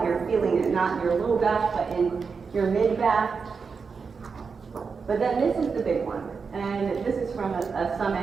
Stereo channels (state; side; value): quieter; left; 5.3 dB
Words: You're feeling it not in your low back, but in your mid-back. But then this is the big one. And this is from a